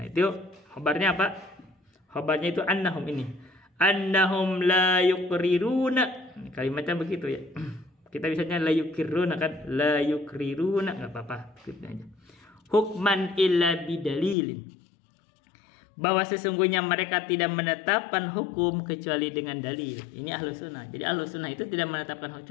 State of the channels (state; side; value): drops out; right; at 14.4 s